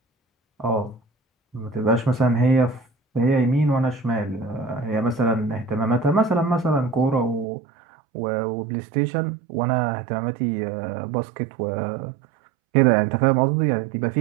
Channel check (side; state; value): left; drops out; at 7.5 s